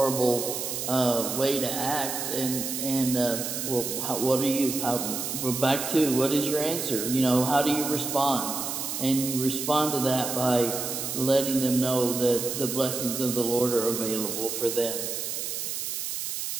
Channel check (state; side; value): noise; right; hiss, 4 dB below the sound